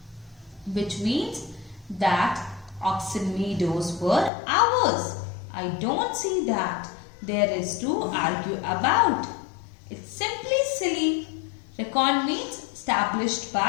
which means that oxen meadows were ours. I don't see that there is to argue about. It's simply silly. Reckon means established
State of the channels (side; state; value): right; drops out; at 4.3 s